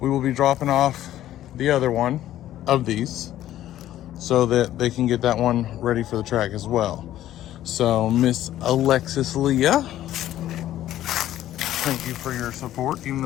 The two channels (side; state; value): right; quieter; 13.0 dB